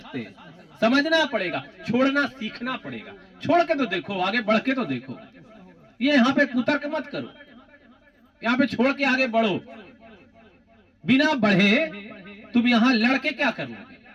हैं, समझना पड़ेगा, छोड़ना सीखना पड़ेगा। छोड़ के तो देखो, आगे बढ़ के तो देखो। ये यहाँ पे कुतर्क मत करो, यहाँ पे छोड़ के आगे बढ़ो। बिना बढ़े तुम यहाँ लड़के क्या करोगे?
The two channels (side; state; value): both; identical; correlation 1.00